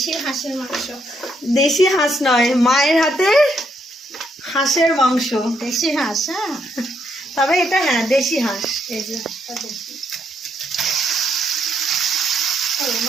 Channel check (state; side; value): normal; both; correlation 0.75